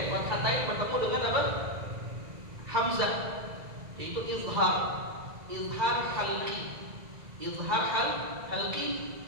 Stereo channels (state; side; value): late; left; 1.9 ms